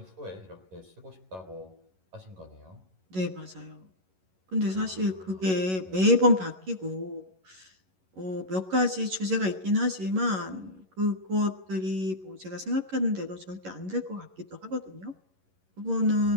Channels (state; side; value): late; left; 11 ms